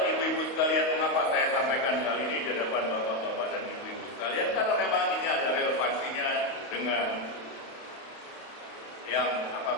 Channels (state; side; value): late; right; 31 ms